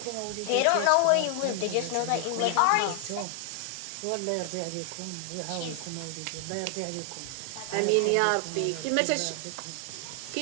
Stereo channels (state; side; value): different; both; correlation 0.00